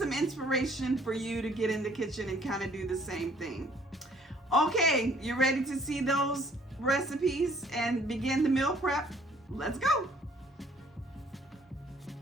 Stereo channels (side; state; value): both; normal; correlation 0.60